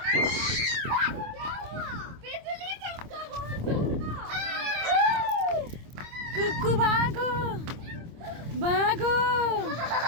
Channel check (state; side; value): late; left; 26 ms